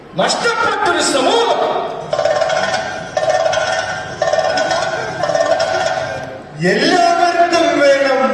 നഷ്ടപ്പെട്ടൊരു സമൂഹം. എല്ലാവർക്കും വേണം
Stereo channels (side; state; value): both; identical; correlation 1.00